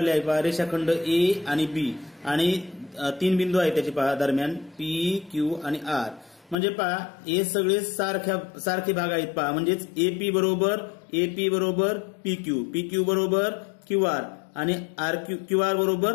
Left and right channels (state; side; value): drops out; right; at 6.6 s